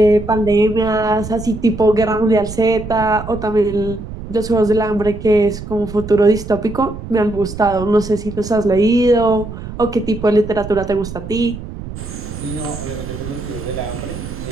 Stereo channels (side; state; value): right; noise; rumble, 10 dB below the sound